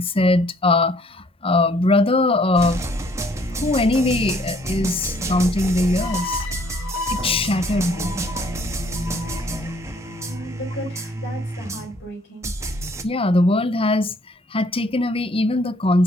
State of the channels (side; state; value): both; normal; correlation 0.61